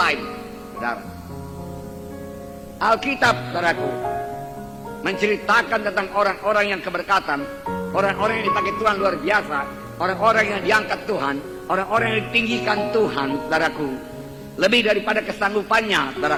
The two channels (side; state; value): both; identical; correlation 1.00